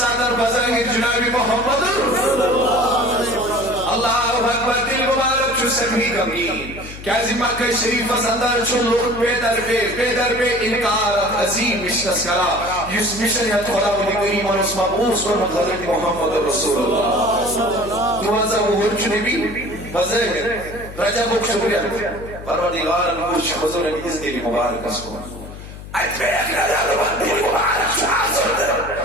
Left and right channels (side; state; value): left; noise; hum, 13 dB below the sound